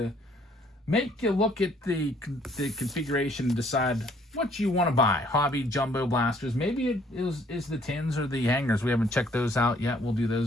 make you look at the configuration and decide what you want to buy. Hobby, jumbo blasters. Maybe it is the tins or the hangers. We haven't checked those out yet. We'll do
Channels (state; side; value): normal; both; correlation 0.62